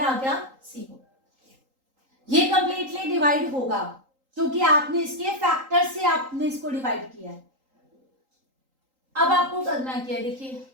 गया 0। ये कंप्लीटली डिवाइड होगा क्योंकि आपने इसके फैक्टर से आपने इसको डिवाइड किया है। अब आपको करना क्या है, देखिए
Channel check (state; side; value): late; left; 3.8 ms